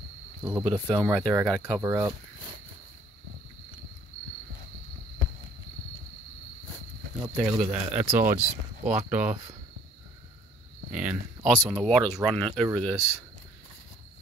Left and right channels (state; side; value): normal; both; correlation 0.59